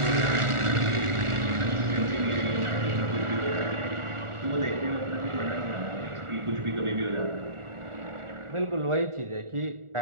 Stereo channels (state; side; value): late; left; 1.4 ms